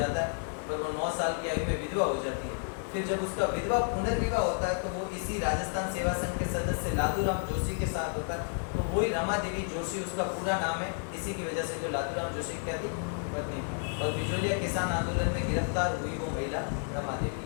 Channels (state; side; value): silent; right; 57 dB below the other